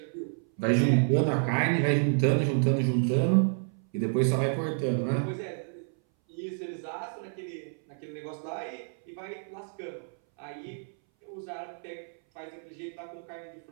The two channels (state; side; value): silent; left; 58 dB below the other